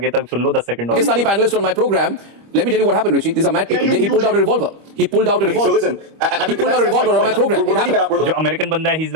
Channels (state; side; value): late; left; 25 ms